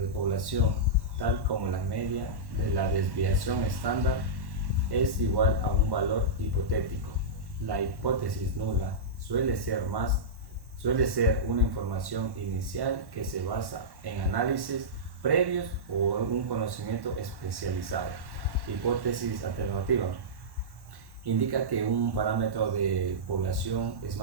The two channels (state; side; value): late; left; 1.1 ms